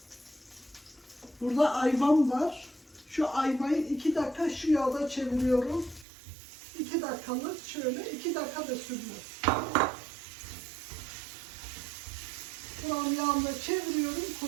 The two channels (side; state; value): left; drops out; at 6.1 s